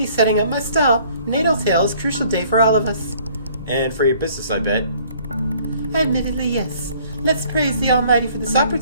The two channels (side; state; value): both; inverted; correlation -0.57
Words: setting up my stall. Natal Tail is a crucial day for all of us. And for your business, I bet. Admittedly, yes. Let's praise the Almighty for this